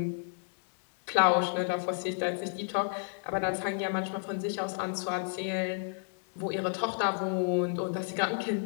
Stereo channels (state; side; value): silent; right; digital silence